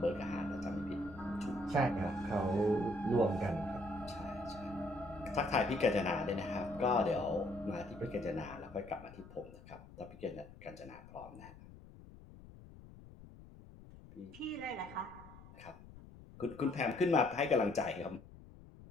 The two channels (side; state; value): left; noise; rumble, 18 dB below the sound